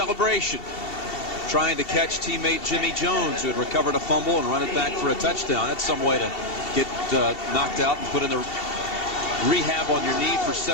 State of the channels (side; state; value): right; late; 2.7 ms